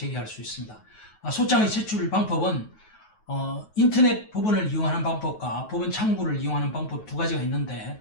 수 있습니다. 소장의 제출 방법은 인터넷 법원을 이용하는 방법과 법원 창구를 이용하는 방법 두 가지가 있는데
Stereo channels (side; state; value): right; late; 9.3 ms